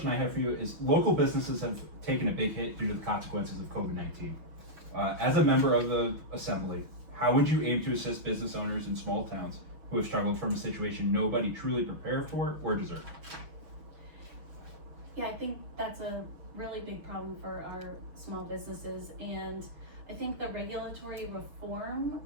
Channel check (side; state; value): left; late; 6.2 ms